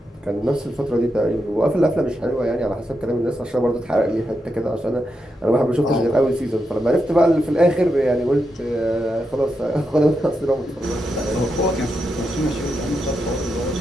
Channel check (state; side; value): normal; both; correlation 0.85